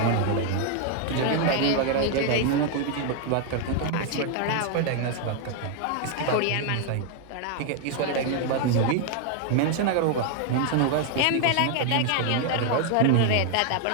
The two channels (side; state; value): both; different; correlation 0.00